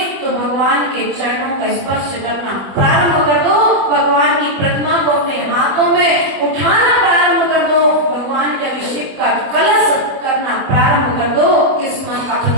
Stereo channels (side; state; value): left; late; 20 ms